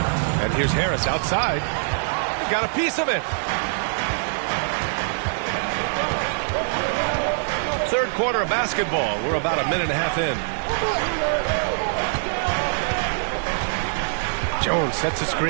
And here's Harris outside. Got a piece of it. Third quarter of basketball. We're about a minute and a half in. Jones sets a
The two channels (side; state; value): left; silent; digital silence